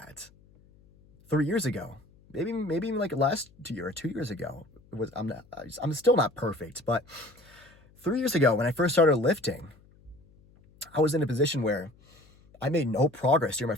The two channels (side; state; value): left; noise; hum, 28 dB below the sound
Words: 3 years ago, maybe even last year or 2 years ago. I'm still not perfect, but 3 years ago when I first started lifting, I was in a position where I made no progress during my